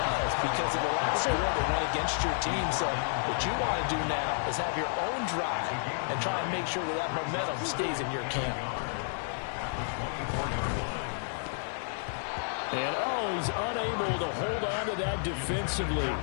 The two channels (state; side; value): silent; right; 57 dB below the other